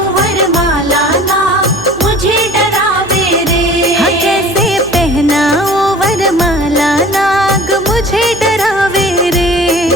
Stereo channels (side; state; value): right; noise; hum, 17 dB below the sound